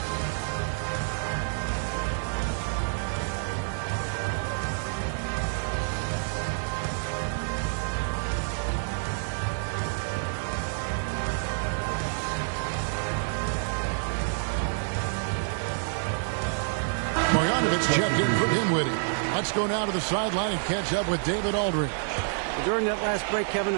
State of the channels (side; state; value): left; silent; digital silence